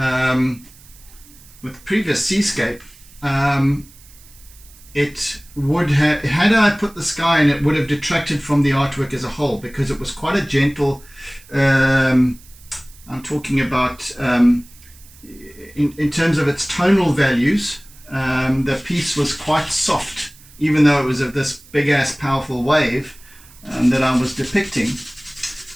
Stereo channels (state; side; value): noise; right; hiss, 24 dB below the sound